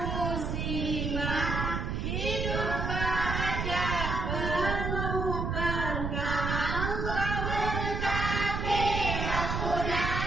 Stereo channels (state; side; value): noise; right; rumble, 1 dB below the sound